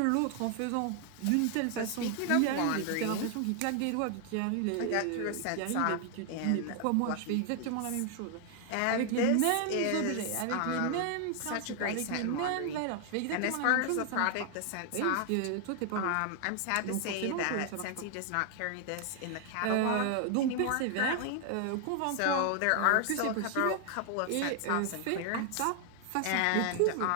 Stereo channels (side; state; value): both; different; correlation 0.00